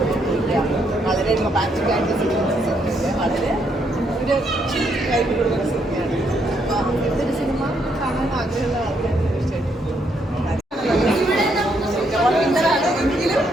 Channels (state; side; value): normal; both; correlation 0.74